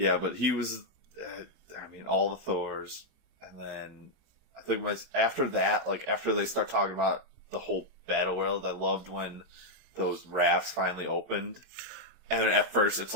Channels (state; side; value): late; left; 22 ms